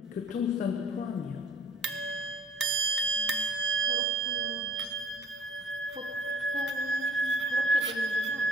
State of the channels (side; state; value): both; normal; correlation 0.54